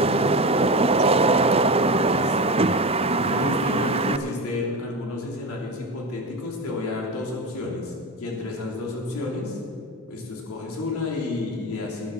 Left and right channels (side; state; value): both; normal; correlation 0.22